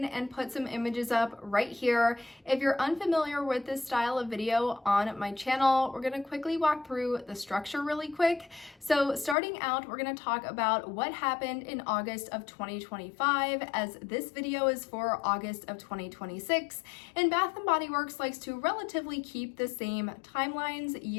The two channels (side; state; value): right; drops out; at 9.3 s